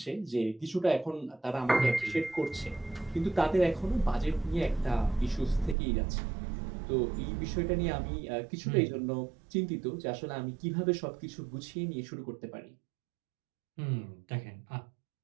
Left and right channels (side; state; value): left; drops out; at 5.8 s